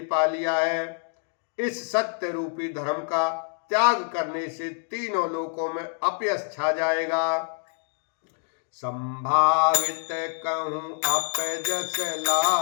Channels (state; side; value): silent; right; 57 dB below the other